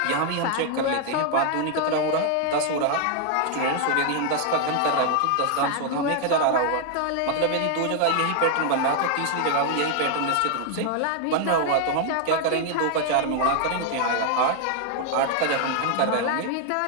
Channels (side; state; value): both; different; correlation 0.00